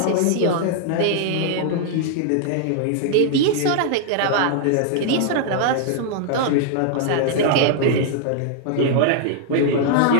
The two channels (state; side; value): different; both; correlation -0.01